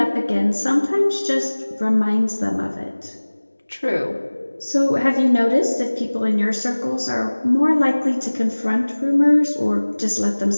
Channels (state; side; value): inverted; both; correlation -1.00